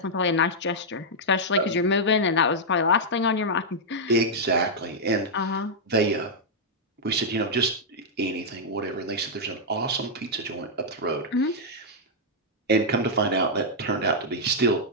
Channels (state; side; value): normal; both; correlation -0.05